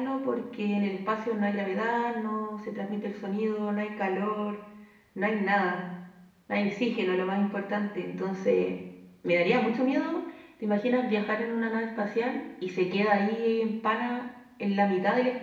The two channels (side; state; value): both; identical; correlation 1.00